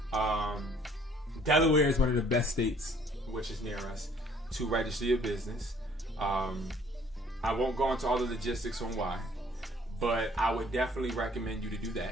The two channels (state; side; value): normal; both; correlation 0.58